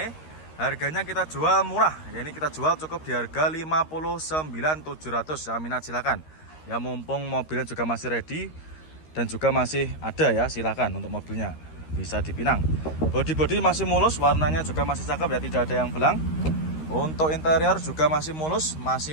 Harganya kita jual murah. Ya ini kita jual cukup di harga 59.700 ya, minat silakan. Ya mumpung mobilnya juga masih ready dan juga masih ada ya, silakan untuk mobilnya bisa dipinang. Bodi masih mulus, warnanya juga masih cakep ya, tidak ada yang belang. Untuk interior juga masih mulus,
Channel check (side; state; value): right; late; 13 ms